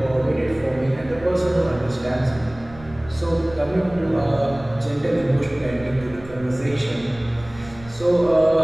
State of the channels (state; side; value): noise; right; rumble, 18 dB below the sound